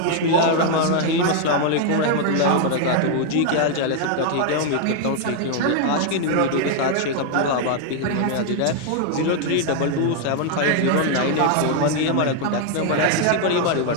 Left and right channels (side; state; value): both; different; correlation 0.00